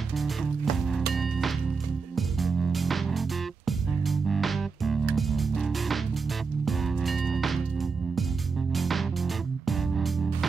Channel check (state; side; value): quieter; left; 4.9 dB